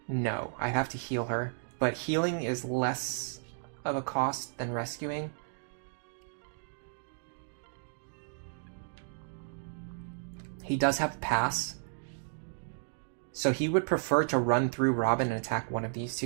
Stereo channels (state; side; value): silent; left; digital silence